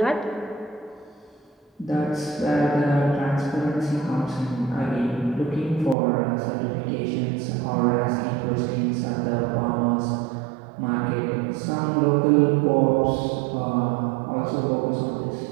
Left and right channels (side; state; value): left; drops out; at 6.0 s